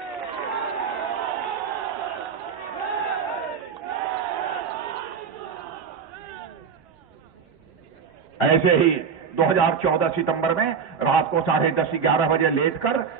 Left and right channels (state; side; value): quieter; left; 6.5 dB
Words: ऐसे ही 2014 सितंबर में रात को 10:30-11 बजे लेटकर